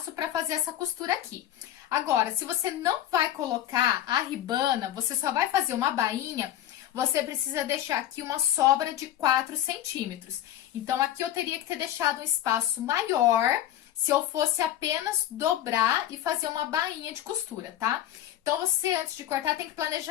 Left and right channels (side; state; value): right; quieter; 12.4 dB